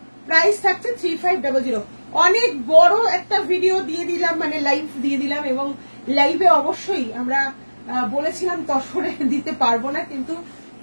প্রাইস থাকছে 3500। অনেক বড় একটা ভিডিও দিয়ে দিলাম, মানে লাইভ দিয়ে দিলাম, এবং লাইভে অবশ্যই আমরা বলেছিলাম তসরে দিতে পারবো না, কিন্তু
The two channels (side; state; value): both; inverted; correlation -1.00